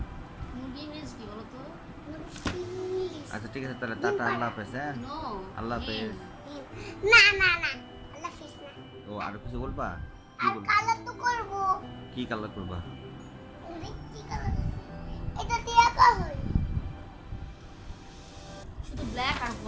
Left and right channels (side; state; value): both; identical; correlation 1.00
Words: মুরগি ইংরেজি কি বলো তো? মুরগি আচ্ছা ঠিক আছে তাহলে টাটা, আল্লাহ হাফেজ। হ্যাঁ নো আল্লাহ হাফেজ। না না না আল্লাহ হাফেজ না ও আর কিছু বলবা? কি আর বলবা? কালার তো করব কি কালার করবা? কি কালার এটা দিয়ে আঁকা হয় শুধু ব্ল্যাক আর